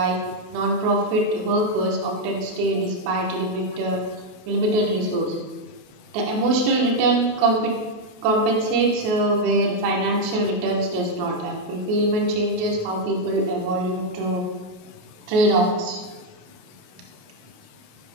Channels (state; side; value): late; left; 27 ms